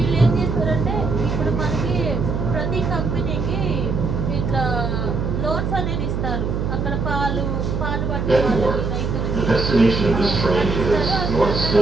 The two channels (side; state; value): right; noise; hum, 1 dB below the sound